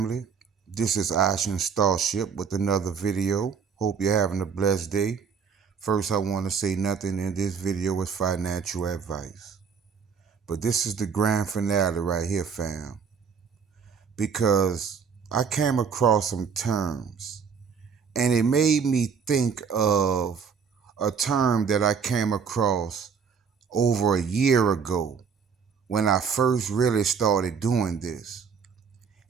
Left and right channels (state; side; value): quieter; left; 6.4 dB